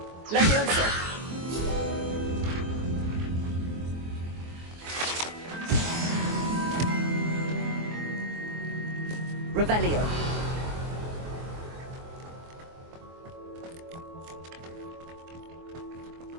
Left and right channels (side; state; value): left; late; 24 ms